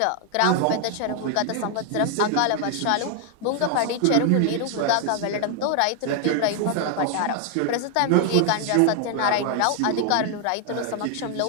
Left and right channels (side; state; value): both; different; correlation 0.00